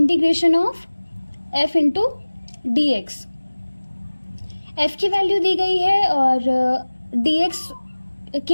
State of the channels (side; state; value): both; inverted; correlation -1.00